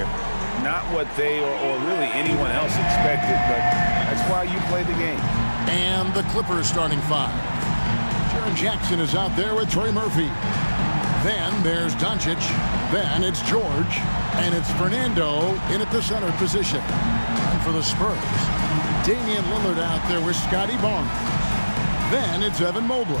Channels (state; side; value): inverted; both; correlation -1.00